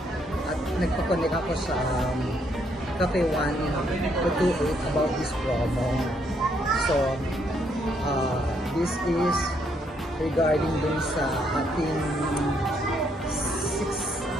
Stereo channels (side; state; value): both; normal; correlation 0.72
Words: At nagpa-connect ako sa Cafe 1-28 about this promo. So, this is regarding dun sa ating